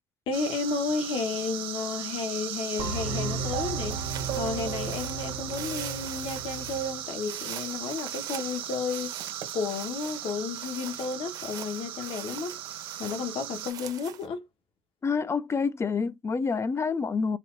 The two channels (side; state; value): both; normal; correlation 0.43